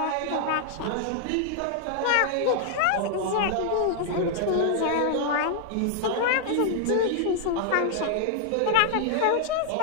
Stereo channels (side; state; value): both; different; correlation -0.01